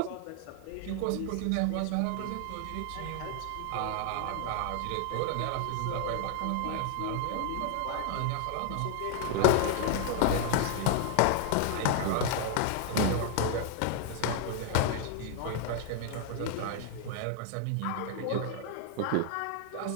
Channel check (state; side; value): different; both; correlation 0.00